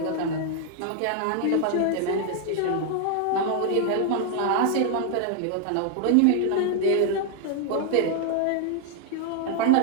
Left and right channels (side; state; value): both; different; correlation 0.00